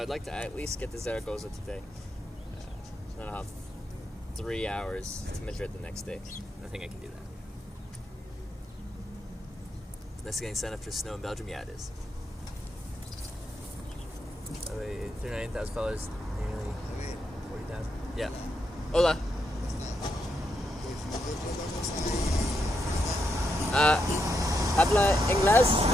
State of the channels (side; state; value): both; normal; correlation 0.82